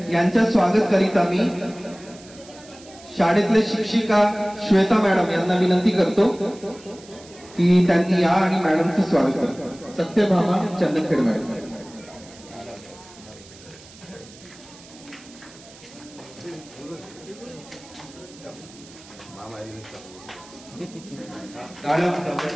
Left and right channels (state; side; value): noise; right; hiss, 21 dB below the sound